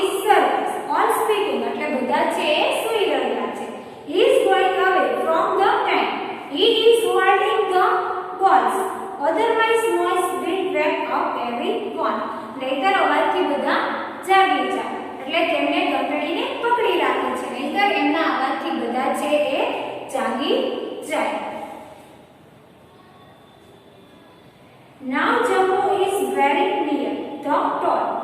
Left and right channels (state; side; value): identical; both; correlation 1.00